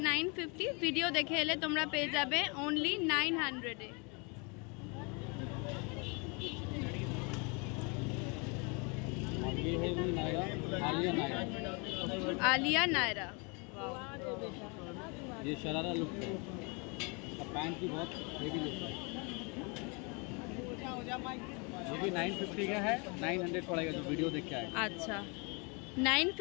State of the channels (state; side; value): quieter; right; 32.0 dB